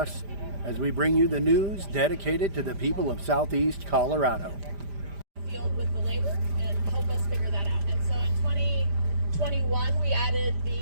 as we bring you the news dedicated to the people of Southeast Colorado. Field with the labor and help us figure that out. And so in 2021 we added the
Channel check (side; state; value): left; late; 5.0 ms